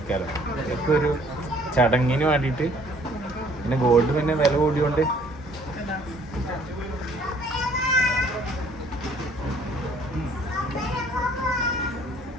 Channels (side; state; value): both; normal; correlation 0.59